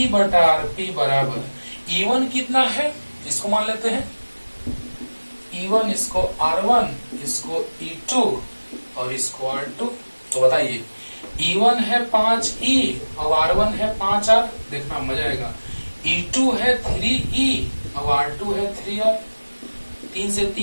बटा आरपी बराबर E1 कितना है, इसको मान लेते हैं E1, इसको R1, इसको E2 और इसको R2। तो बताइए E1 है 5E और R1 है 5R। देखना मजा आएगा। E2 है 3E और R2 है 3R। 3 से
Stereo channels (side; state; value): both; inverted; correlation -1.00